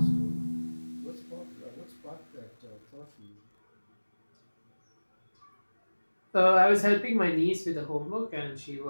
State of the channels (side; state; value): both; inverted; correlation -1.00